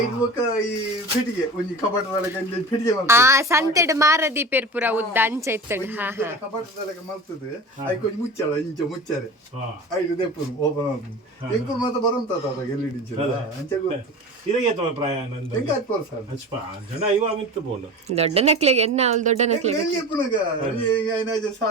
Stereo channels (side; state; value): both; normal; correlation 0.33